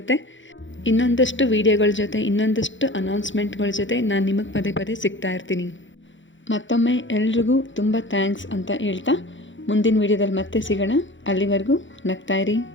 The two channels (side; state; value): right; late; 0.55 ms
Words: ಇನ್ನೊಂದಷ್ಟು ವೀಡಿಯೋಗಳ ಜೊತೆ, ಇನ್ನೊಂದಷ್ಟು ಅನೌನ್ಸ್ಮೆಂಟ್ಗಳ ಜೊತೆ ನಾನು ನಿಮಗೆ ಪದೇ ಸಿಗ್ತಾ ಇರ್ತೀನಿ. ಮತ್ತೊಮ್ಮೆ ಎಲ್ರಿಗೂ ತುಂಬ ಥ್ಯಾಂಕ್ಸ್ ಅಂತ ಹೇಳ್ತಾ ಮುಂದಿನ ವೀಡಿಯೋದಲ್ಲಿ ಮತ್ತೆ ಸಿಗೋಣ. ಅಲ್ಲಿವರೆಗೂ ನಗ್ತಾಯಿರಿ,